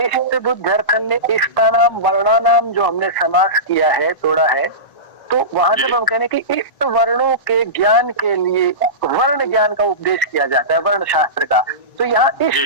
बुद्ध्यर्थन में इष्टानाम वर्णानाम जो हमने समास किया है, तोड़ा है, तो वहां जब हम कहने कि इष्ट वर्णों के ज्ञान के लिए वर्ण ज्ञान का उपदेश किया जाता है, वर्ण शास्त्र का, तो यहाँ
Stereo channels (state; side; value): late; right; 1.0 ms